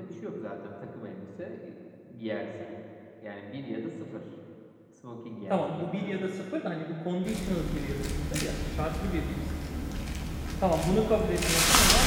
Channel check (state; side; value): identical; both; correlation 1.00